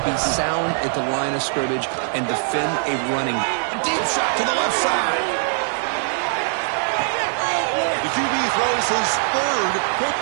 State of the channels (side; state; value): left; silent; digital silence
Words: be sound at the line of scrimmage and defend a running. A deep shot to the left side. The QB throws his third pick